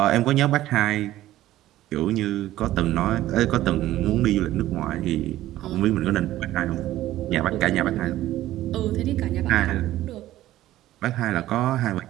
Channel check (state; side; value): quieter; left; 14.7 dB